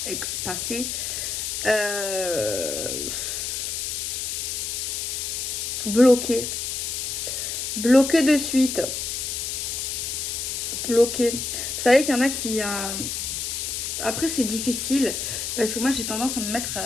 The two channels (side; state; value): left; noise; hiss, 3 dB below the sound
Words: passée. Bloqué. Bloqué de suite. Bloqué. Vous savez qu'il y en a qui... Après, c'est difficile. Parce que moi, j'ai tendance à me mettre